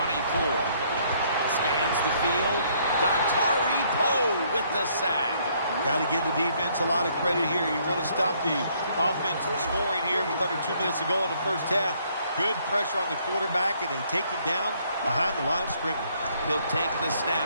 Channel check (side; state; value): both; inverted; correlation -0.66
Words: Scans the field. Dontari Poe with the sack. Got to give the defense a lot of credit here. You want to stop the offense from scoring here with under 2 minutes to go in the first half. Good pressure on the quarterback, and they take him down behind the line of scrimmage. He'll take the